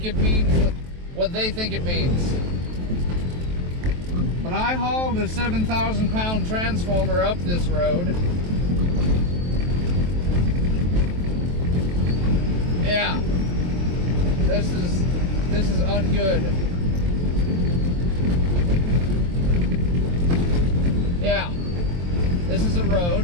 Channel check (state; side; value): late; left; 23 ms